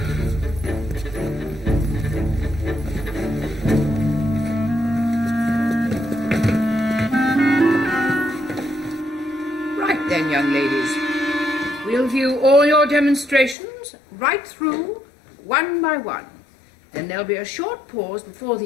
Right then, young ladies. We'll view all your demonstrations right through, one by one. Then there'll be a short pause before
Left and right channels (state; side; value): drops out; right; at 13.6 s